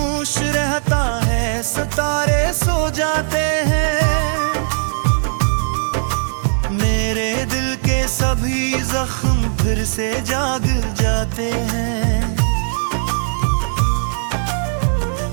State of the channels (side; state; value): left; silent; digital silence